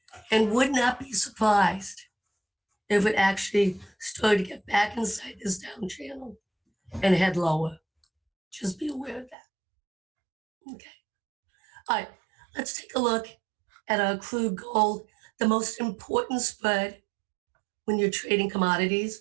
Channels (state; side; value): drops out; left; at 9.3 s